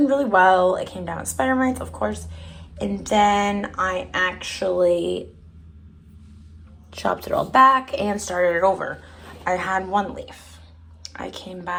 really well. It came down with spider mites, of course. And then I actually chopped it all back and started it over. I had one leaf. I came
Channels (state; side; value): identical; both; correlation 1.00